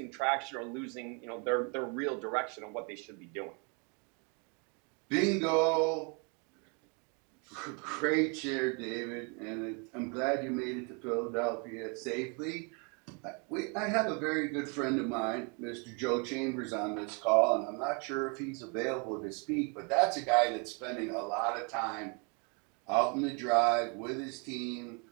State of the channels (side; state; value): left; quieter; 35.1 dB